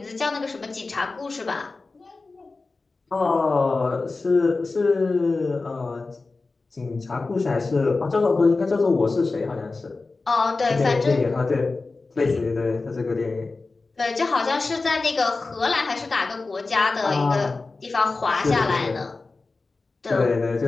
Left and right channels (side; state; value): right; quieter; 3.7 dB